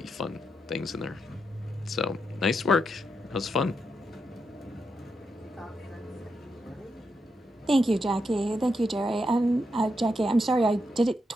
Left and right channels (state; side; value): normal; both; correlation 0.83